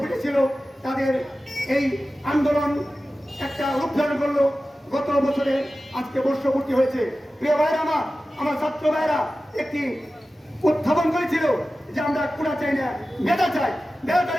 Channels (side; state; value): both; normal; correlation 0.95